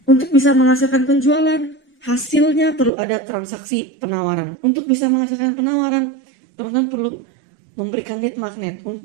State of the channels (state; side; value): drops out; left; at 2.9 s